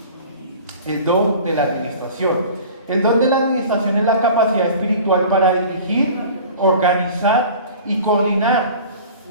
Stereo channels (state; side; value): inverted; both; correlation -0.42